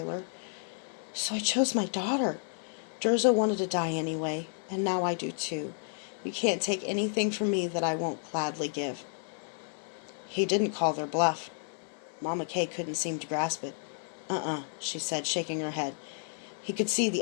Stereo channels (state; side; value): silent; right; digital silence